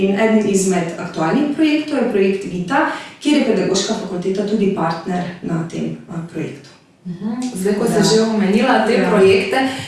eden izmed aktualnih projektov je projekt Vita, kjer je pedagoška fakulteta tudi partner na tem projektu. Zdaj, ko si že omenila te projekte,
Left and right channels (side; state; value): both; identical; correlation 1.00